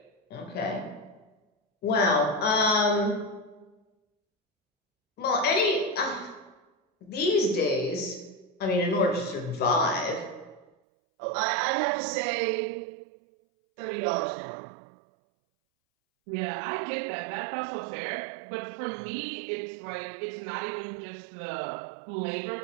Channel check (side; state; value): left; drops out; at 10.7 s